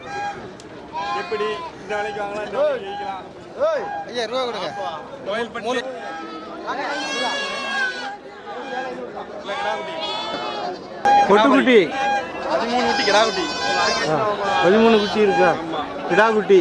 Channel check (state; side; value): identical; both; correlation 1.00